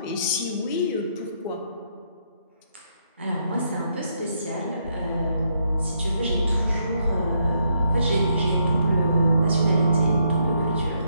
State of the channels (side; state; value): both; inverted; correlation -0.76